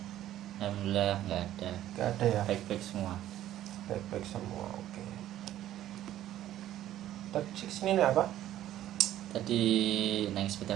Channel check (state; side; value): quieter; left; 12.8 dB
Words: Alhamdulillah nggak ada. Gak ada ya? Baik-baik semua. Baik-baik semua. Oke. Tadi kesini nih apa? Tadi naik